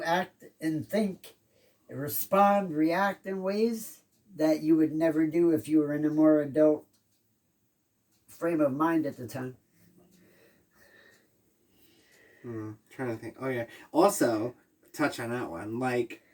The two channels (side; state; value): both; identical; correlation 1.00